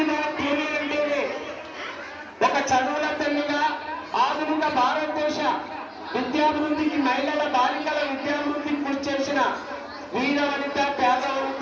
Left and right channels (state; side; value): identical; both; correlation 1.00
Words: పూలే అంటేనే ఒక చదువుల తల్లిగా ఆధునిక భారతదేశ విద్యాభివృద్ధికి మహిళల బాలికల విద్యాభివృద్ధికి కృషి చేసిన వీర వనిత పేద